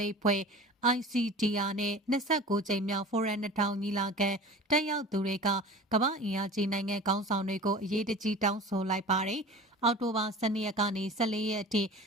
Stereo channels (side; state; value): both; normal; correlation 0.38